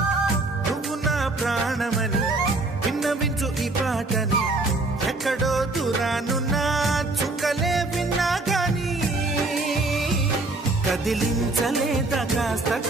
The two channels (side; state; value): left; quieter; 3.1 dB